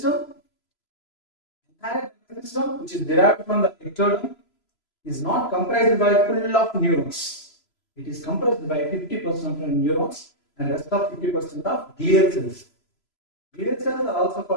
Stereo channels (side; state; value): right; late; 3.0 ms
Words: entire nervous system, which is derived from the ectoderm, is not comprised by full of neurons. It is comprised by 50% of neurons and rest of 50% of glial cells. Glial cells are also